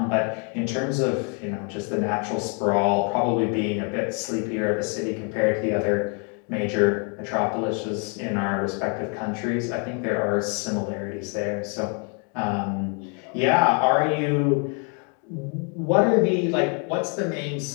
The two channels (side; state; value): right; quieter; 38.3 dB